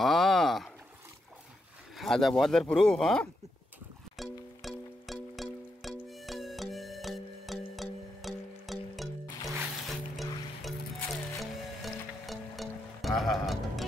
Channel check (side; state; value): both; normal; correlation 0.83